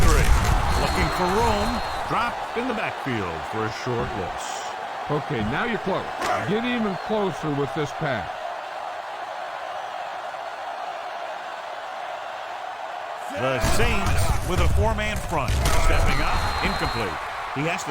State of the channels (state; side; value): identical; both; correlation 1.00